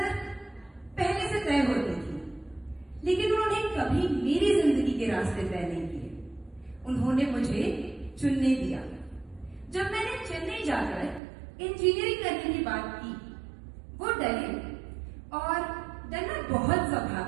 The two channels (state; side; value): drops out; left; at 11.2 s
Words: पहले से तय होती थी, लेकिन उन्होंने कभी मेरी जिंदगी के रास्ते तय नहीं किए। उन्होंने मुझे चुनने दिया। जब मैंने चेन्नई जाकर इंजीनियरिंग करने की बात की, वो डरे और डरना बहुत